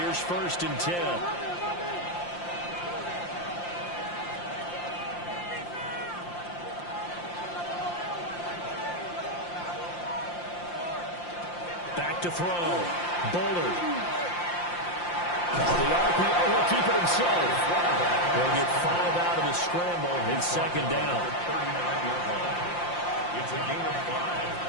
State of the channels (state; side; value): late; right; 5.7 ms